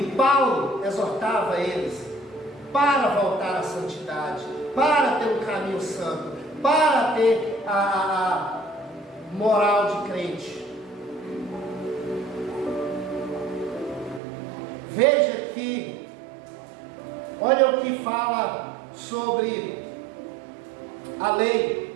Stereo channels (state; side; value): drops out; left; at 14.2 s